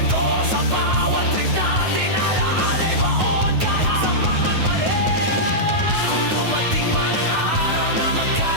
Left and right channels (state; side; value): late; left; 9.3 ms